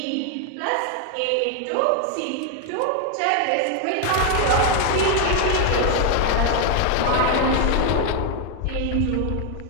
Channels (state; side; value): different; both; correlation 0.01